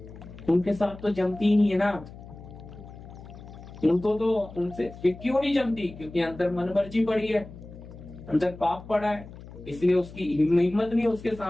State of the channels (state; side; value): noise; left; hum, 16 dB below the sound